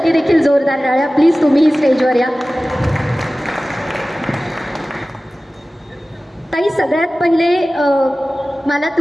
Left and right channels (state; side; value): normal; both; correlation 0.97